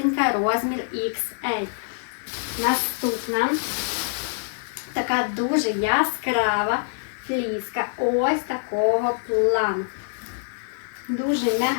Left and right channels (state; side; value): silent; right; digital silence